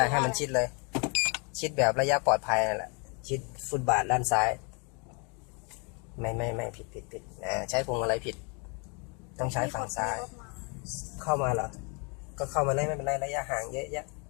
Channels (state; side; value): quieter; right; 34.0 dB